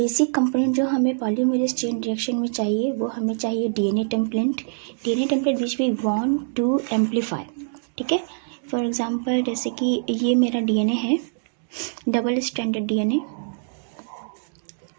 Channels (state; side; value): silent; left; digital silence